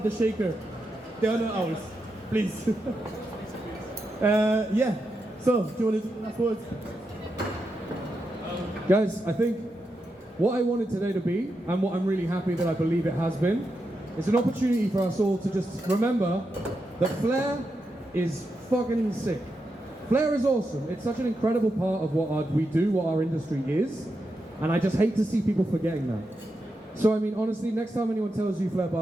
the shaker. They are not ours. Please. Yeah. So do you want to do the last words? Guys, I think what I wanted today to be, and what I'm really happy that I believe it has been, is an opportunity for us all to just remember that Flair is fucking sick. Flair is awesome. It's such an incredible part of what we do, what our industry is, and I just hate to see people forgetting that. So I mean, honestly, next time anyone tells you Flair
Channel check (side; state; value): both; normal; correlation 0.86